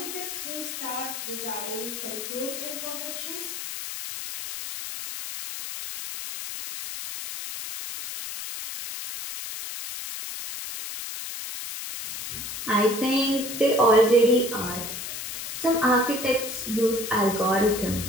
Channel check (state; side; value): noise; left; hiss, 7 dB below the sound